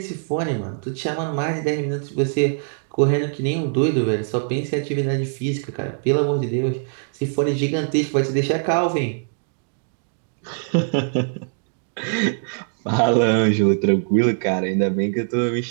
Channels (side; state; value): left; silent; digital silence